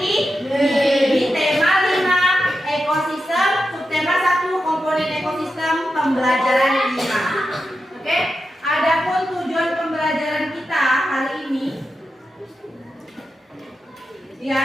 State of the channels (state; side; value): normal; both; correlation 0.89